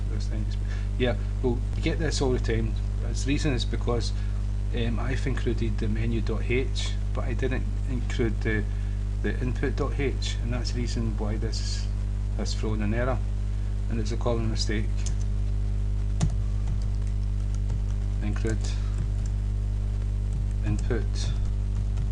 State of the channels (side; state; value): both; identical; correlation 1.00